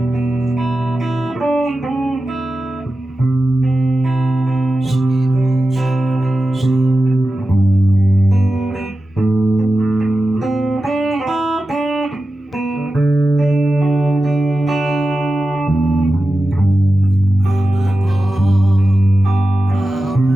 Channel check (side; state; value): both; normal; correlation 0.93